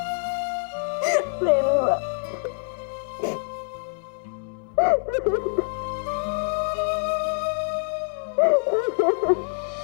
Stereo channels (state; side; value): silent; right; 61 dB below the other